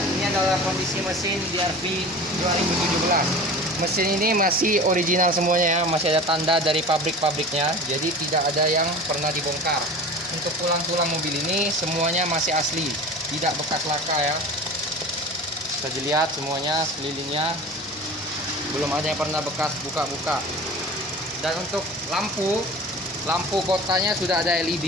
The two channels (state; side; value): normal; both; correlation 0.37